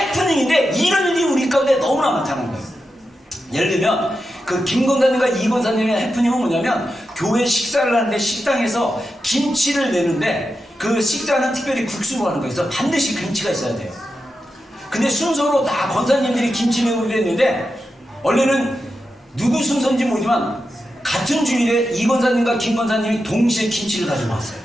이런 일이 우리 가운데 너무나 많다는 거예요. 예를 들면 그 김 권사님과 이 권사님의 해프닝은 뭐냐면 교회 식사를 하는데 식당에서 김치를 내는데 그 식사는 특별히 국수로 하는 거여서 반드시 김치가 있어야 돼요. 근데 순서로 다 권사님들이 김치 내고 그랬는데 원래는 누구 순서인지 모르지만 같은 주일에 이 권사님과 김 권사님이 동시에 김치를 가지고 왔어요.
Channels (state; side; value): normal; both; correlation 0.89